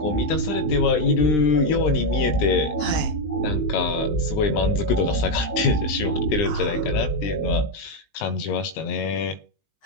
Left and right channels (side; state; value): right; late; 19 ms